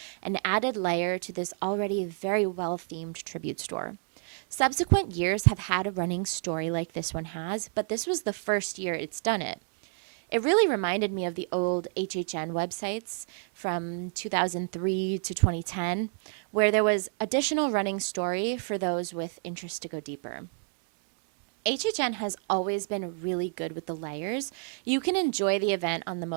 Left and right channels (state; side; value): silent; left; 58 dB below the other